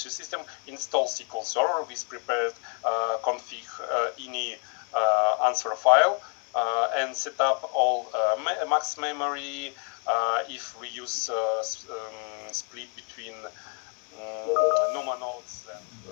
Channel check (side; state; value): right; quieter; 39.1 dB